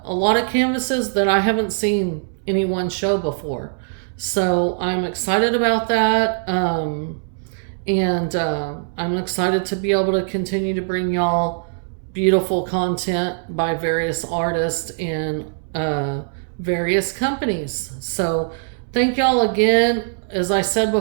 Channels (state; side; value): silent; left; 64 dB below the other